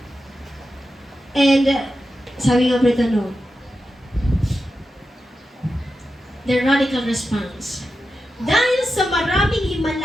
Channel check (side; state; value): both; normal; correlation 0.90